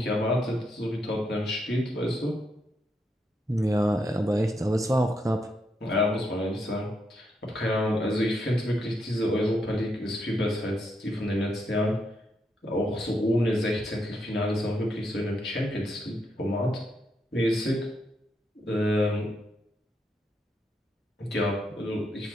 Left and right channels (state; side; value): normal; both; correlation 0.80